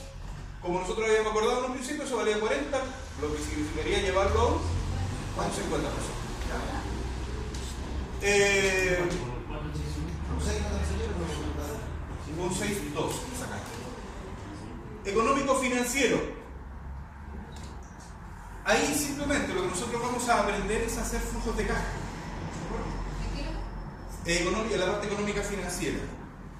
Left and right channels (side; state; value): both; identical; correlation 1.00